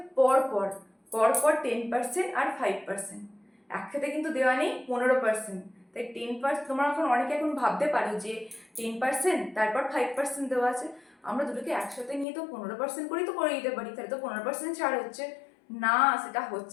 পরপর, পরপর 10% আর 5%, একসাথে কিন্তু দেওয়া নেই 15%। তাই 10%, তোমরা এখন অনেকে এখন ভাবতে পারো যে 10% তারপর 5% দেওয়া আছে, আমরা দুটোকে একসাথে নিয়ে তো 15% করেই তো করে দিতে পারি, তাহলে তো 15% ছাড় হচ্ছে না, সেটা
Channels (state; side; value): drops out; right; at 12.2 s